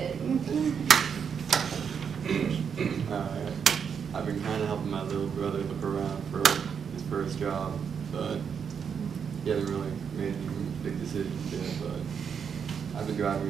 I've been kind of helping my little brother look around for his first job, but he hasn't really made any big decisions yet, but I've been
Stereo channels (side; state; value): left; quieter; 7.0 dB